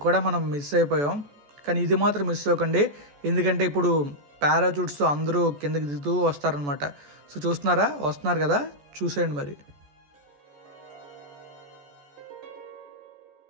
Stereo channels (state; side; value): late; left; 14 ms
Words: కూడా మనం మిస్ అయిపోయాం. కానీ ఇది మాత్రం మిస్ అవ్వకండి, ఎందుకంటే ఇప్పుడు పారాచూట్స్ అందరూ కిందకి దిగుతూ వస్తారనమాట. సో చూస్తున్నారా, వస్తున్నారు కదా, చూసేయండి మరి.